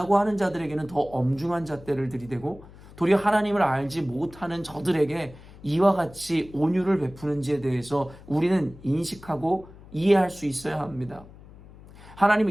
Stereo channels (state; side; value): noise; left; hum, 20 dB below the sound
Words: 하는 자들에게는 더 엄중한 잣대를 들이대고 도리어 하나님을 알지 못하는 저들에게 이와 같이 온유를 베푸는지에 대해서 우리는 인식하고 이해할 수 있어야 합니다.